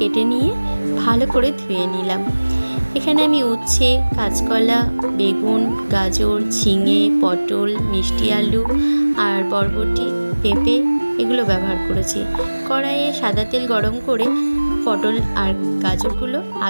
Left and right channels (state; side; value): inverted; both; correlation -1.00